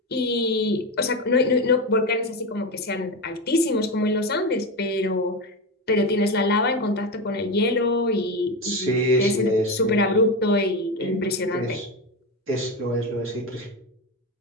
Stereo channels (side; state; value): both; normal; correlation 0.16